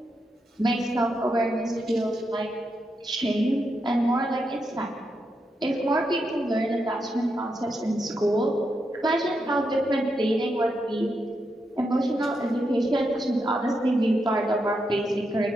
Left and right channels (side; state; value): both; normal; correlation 0.84